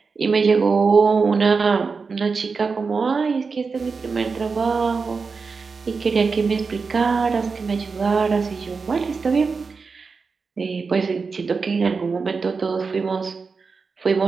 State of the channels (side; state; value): left; quieter; 4.8 dB